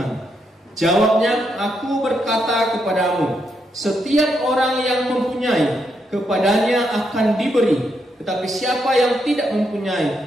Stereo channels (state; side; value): normal; both; correlation 0.80